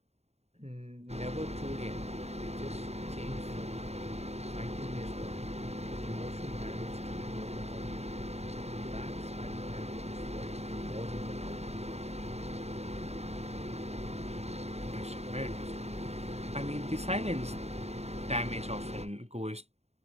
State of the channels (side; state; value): left; late; 0.31 ms